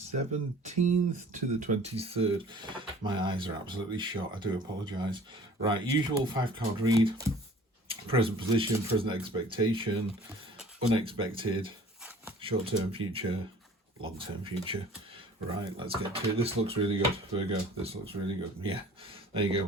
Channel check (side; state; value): both; normal; correlation 0.49